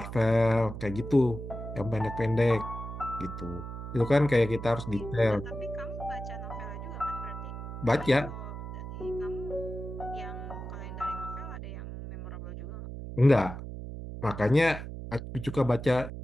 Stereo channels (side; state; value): right; noise; hum, 8 dB below the sound